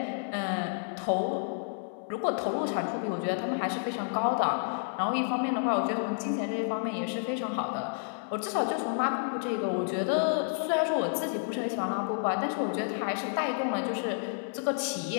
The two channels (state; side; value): silent; right; 58 dB below the other